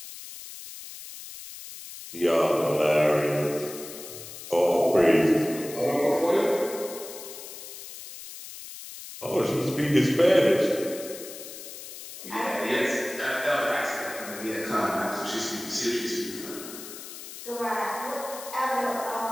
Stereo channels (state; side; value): noise; left; hiss, 13 dB below the sound